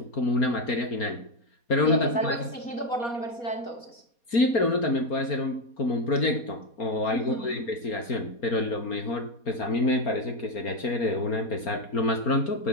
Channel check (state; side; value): late; right; 4.3 ms